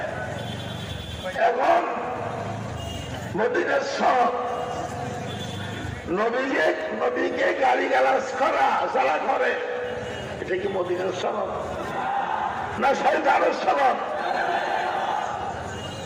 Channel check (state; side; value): identical; both; correlation 1.00